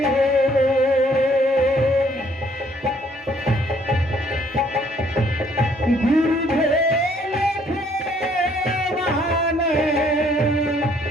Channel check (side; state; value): both; normal; correlation 0.64